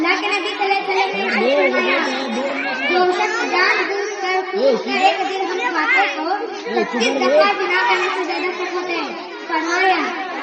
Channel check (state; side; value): identical; both; correlation 1.00